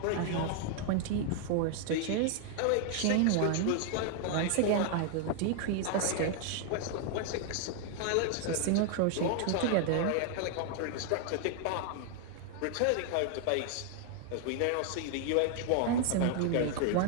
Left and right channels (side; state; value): both; different; correlation 0.00